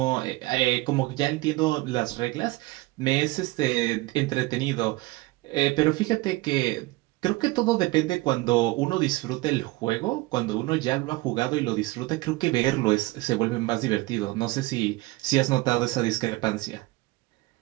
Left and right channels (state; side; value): quieter; left; 21.1 dB